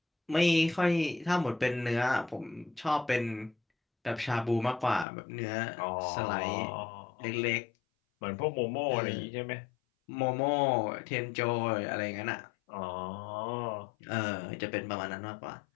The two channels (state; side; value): drops out; right; at 5.1 s